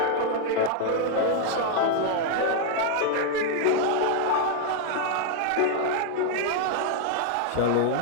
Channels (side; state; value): both; different; correlation 0.00